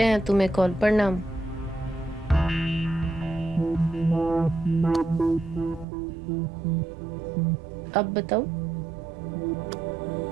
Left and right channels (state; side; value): drops out; left; at 5.9 s